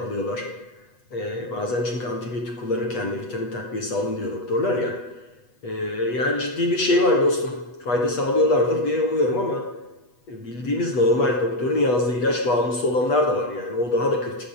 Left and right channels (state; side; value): late; right; 8.2 ms